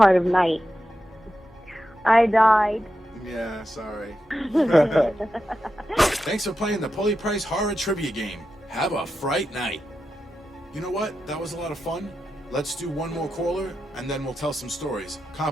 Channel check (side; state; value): both; normal; correlation 0.89